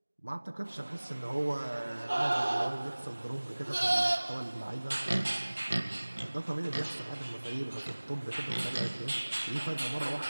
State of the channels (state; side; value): inverted; both; correlation -1.00